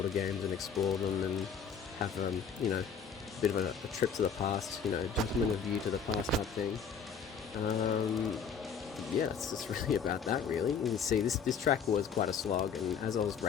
games and explore them and have, you know, a bit of a trip to the past, you know, gentleman view to the past type thing. Yeah, it's really about that, really. You can see this track was quite a slog, and as I was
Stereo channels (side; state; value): right; quieter; 6.5 dB